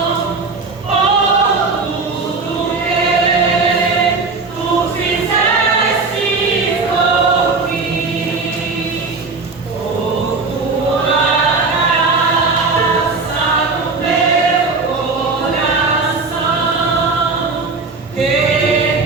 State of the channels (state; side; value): quieter; left; 4.1 dB